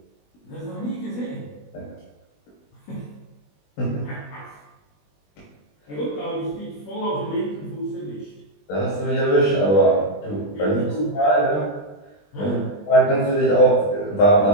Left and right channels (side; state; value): right; late; 20 ms